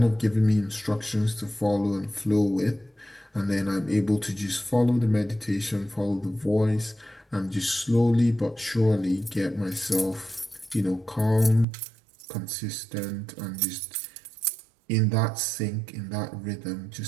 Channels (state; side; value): drops out; left; at 11.7 s